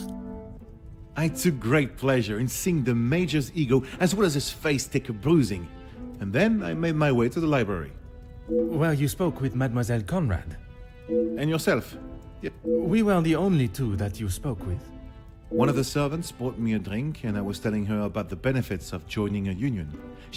I took great pleasure in seeing the Major's ego as well as his face take a bruising. And then I made my way to the library. Well, you spoke with Mademoiselle Conrad. And yourself? We were the only two that you spoke with. One of the servants bought me a drink and I was telling her about the benefits of joining a union.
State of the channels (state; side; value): identical; both; correlation 1.00